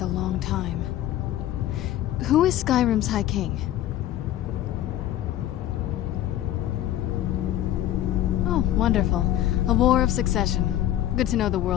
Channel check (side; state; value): right; quieter; 12.8 dB